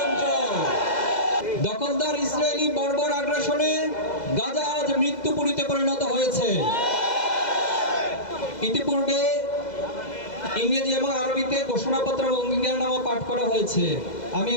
দখলদার ইসরায়েলি বর্বর আগ্রাসনে গাজা আজ মৃত্যুপুরীতে পরিণত হয়েছে। ইতিপূর্বে ইংরেজি এবং আরবিতে ঘোষণাপত্র এবং অঙ্গীকারনামা পাঠ করা হয়েছে। আমি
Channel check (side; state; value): right; late; 2.0 ms